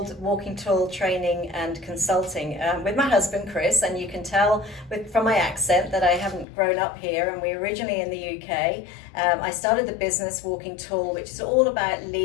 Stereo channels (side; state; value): right; drops out; at 6.5 s